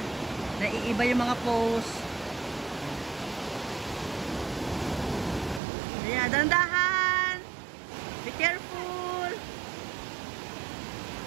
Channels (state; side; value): drops out; left; at 5.6 s